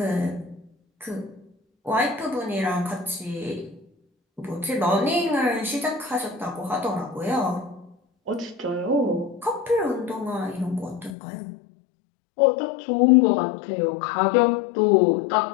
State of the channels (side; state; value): right; drops out; at 11.2 s